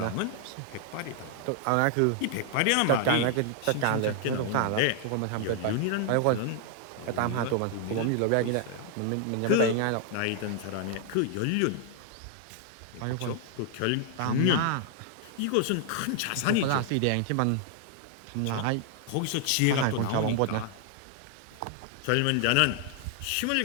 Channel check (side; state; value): both; different; correlation 0.00